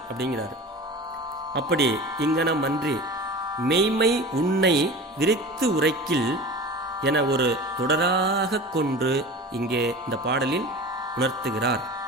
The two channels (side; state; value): both; normal; correlation 0.35